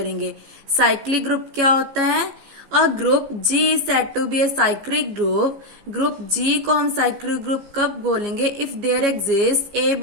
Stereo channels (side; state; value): left; late; 15 ms